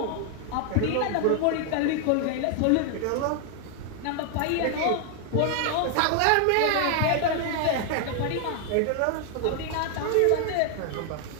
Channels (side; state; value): both; different; correlation 0.00